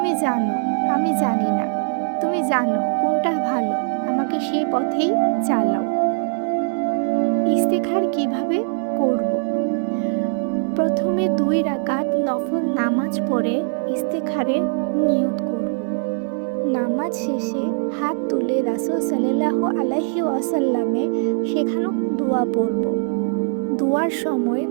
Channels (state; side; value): silent; left; digital silence